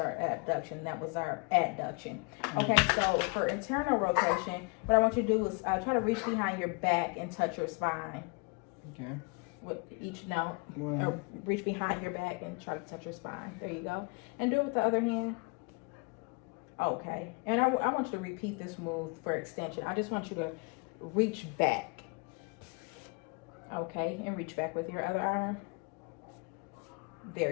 abduction. That was our adduction. Okay, so for internal rotation, what I want you to do is try to reach behind your back and touch your spine. Okay. With each note, Well, or reach behind your back and try to touch your spine. There you go. And do it with the other hand. Okay. And I want you to repeat this move for extension. I just want you to reach back. Okay, and reach back with your other arm.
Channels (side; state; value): right; quieter; 31.3 dB